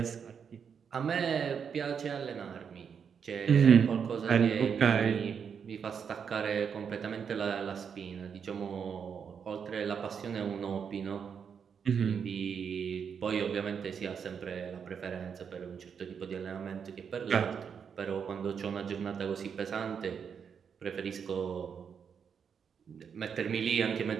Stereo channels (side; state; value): left; quieter; 6.9 dB